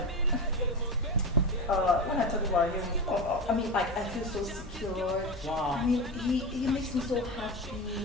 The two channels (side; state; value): both; normal; correlation 0.21